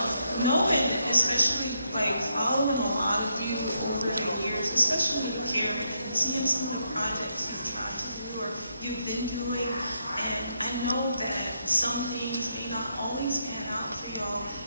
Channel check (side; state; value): both; inverted; correlation -0.79